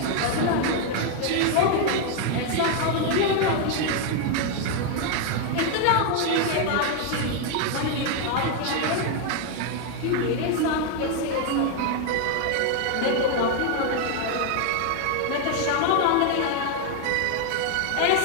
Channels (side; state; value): both; different; correlation 0.00